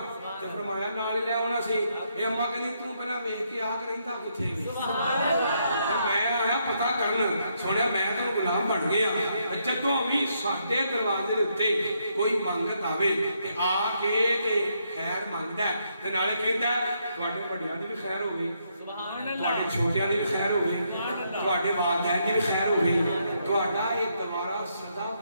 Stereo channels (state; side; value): inverted; both; correlation -0.76